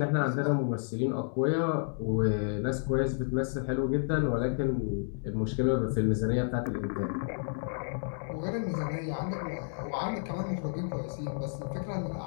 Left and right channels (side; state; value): right; silent; digital silence